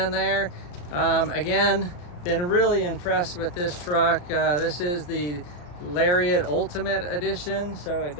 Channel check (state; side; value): late; right; 34 ms